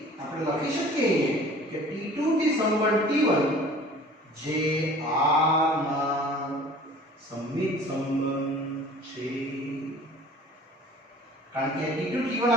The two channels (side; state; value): both; normal; correlation 0.47